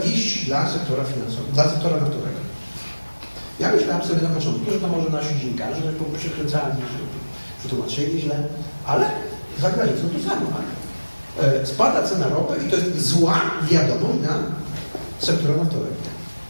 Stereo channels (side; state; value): both; inverted; correlation -1.00